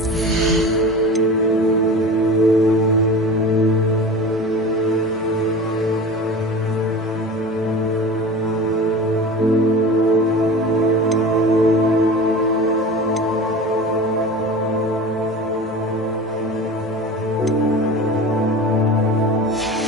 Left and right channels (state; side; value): normal; both; correlation 0.34